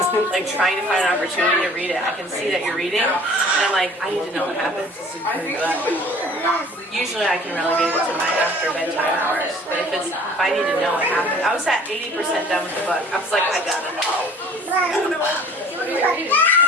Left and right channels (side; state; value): both; normal; correlation 0.50